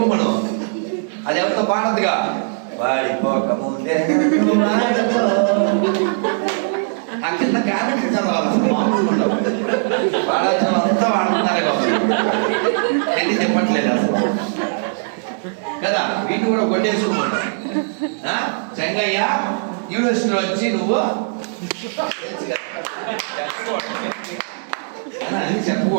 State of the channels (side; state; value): left; silent; 66 dB below the other